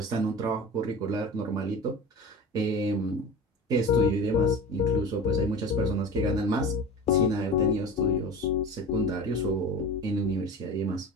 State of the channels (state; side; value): normal; both; correlation 0.33